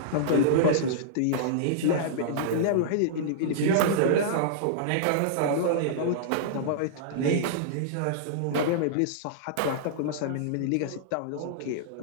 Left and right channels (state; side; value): different; both; correlation -0.02